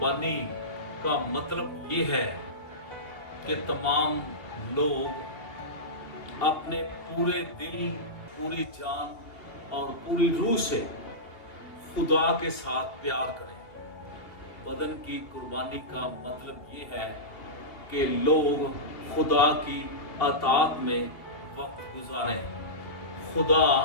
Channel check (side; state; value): right; late; 2.8 ms